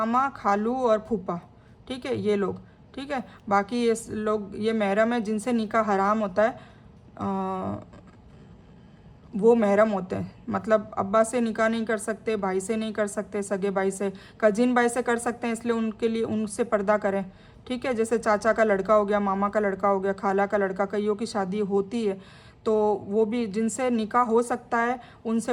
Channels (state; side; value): identical; both; correlation 1.00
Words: खालू और फूफा, ठीक है, ये लोग, ठीक है। बाकी ये लोग ये महरम है जिनसे निकाह हराम होता है, वो महरम होते हैं। मतलब अब्बा से निकाह नहीं कर सकते, भाई से नहीं कर सकते, सगे भाई से, कजिन भाई से कर सकते हैं, इसलिए उनके लिए उनसे पर्दा करें, ठीक है। जैसे चाचा का लड़का हो गया, मामा का लड़का हो गया, खाला का लड़का, कईयों की शादी होती है, तो वो भी जिनसे निकाह हो सकता है